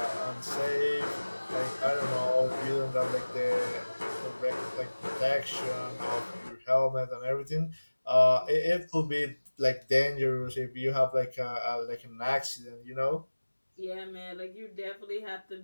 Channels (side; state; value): both; inverted; correlation -1.00